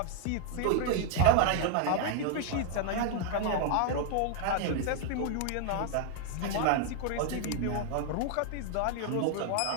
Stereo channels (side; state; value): both; different; correlation 0.01